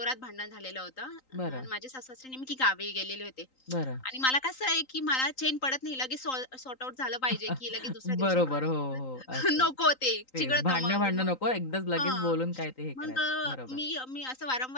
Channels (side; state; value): right; late; 3.9 ms